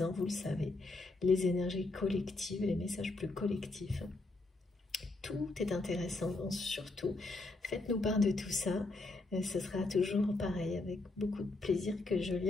vous le savez, les énergies collectives, les messages plus collectifs. Tout est intéressant, surtout faites-nous part de tout ça. Ce sera toujours pareil, avec beaucoup de plaisir que je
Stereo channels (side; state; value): right; quieter; 3.1 dB